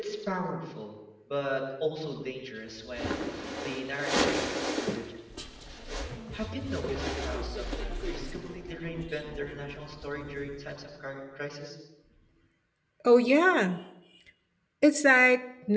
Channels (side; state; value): both; identical; correlation 1.00